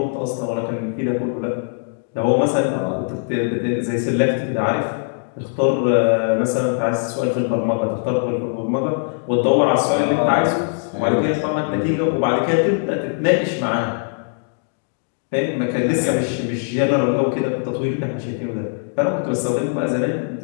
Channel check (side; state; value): right; silent; digital silence